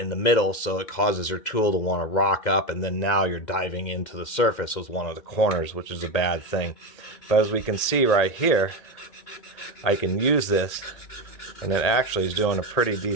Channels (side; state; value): right; late; 1.8 ms